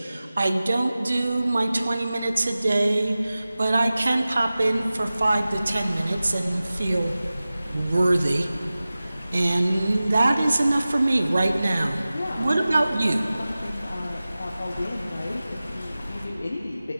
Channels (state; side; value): inverted; both; correlation -0.97